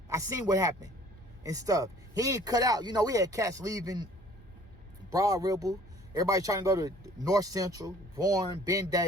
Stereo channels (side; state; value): both; normal; correlation 0.53